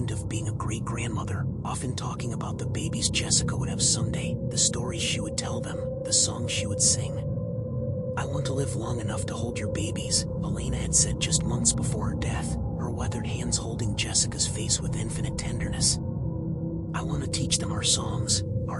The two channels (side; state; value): both; identical; correlation 1.00